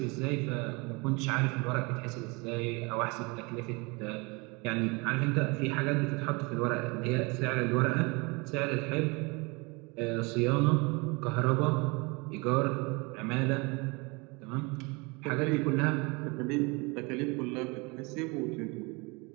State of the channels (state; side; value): quieter; left; 27.9 dB